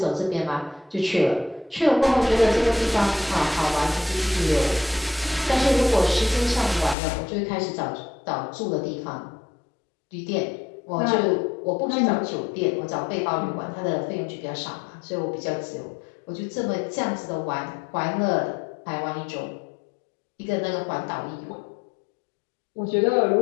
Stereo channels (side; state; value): right; drops out; at 7.0 s